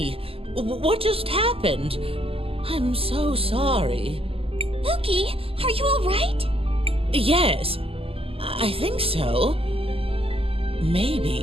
What just happened? I'm so sorry. Buki, are you alright? Yes, I think so. Maybe.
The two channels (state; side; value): late; left; 0.28 ms